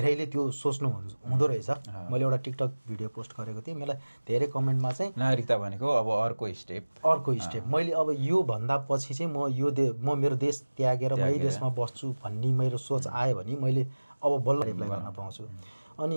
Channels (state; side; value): inverted; both; correlation -1.00